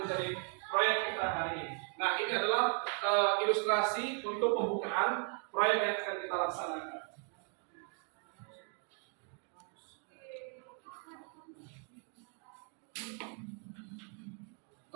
menjadi proyek kita hari ini. Nah, ini adalah ilustrasi untuk pembukaan proyek yang akan kita laksanakan.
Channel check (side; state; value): left; quieter; 39.9 dB